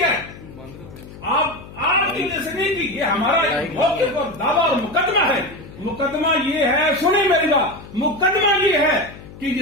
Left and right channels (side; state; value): left; noise; hum, 17 dB below the sound